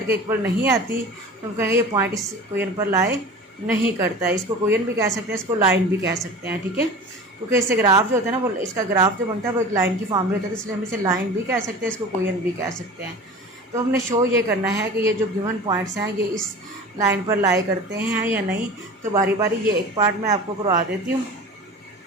के इक्वल नहीं आती, तो हम कहेंगे ये पॉइंट इस इक्वेशन पर लाई नहीं करता है। इसको इक्वेशन भी कह सकते हैं, इसको लाइन भी कह सकते हैं। ठीक है, क्योंकि इससे ग्राफ जो होता है ना, वो इसका ग्राफ जो बनता है वो एक लाइन की फॉर्म में होता है, तो इसलिए हम इसे लाइन भी कह सकते हैं, इसको इक्वेशन भी कह सकते हैं। तो हमने शो ये करना है कि ये जो गिवन पॉइंट्स हैं ये इस लाइन पर लाई करते हैं या नहीं। तो बारी बारी ये एक पार्ट मैं आपको करवा देती हूँ,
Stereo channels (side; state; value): both; normal; correlation 0.36